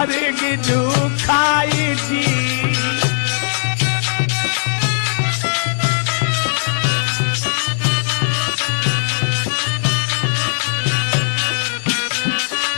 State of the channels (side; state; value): right; silent; digital silence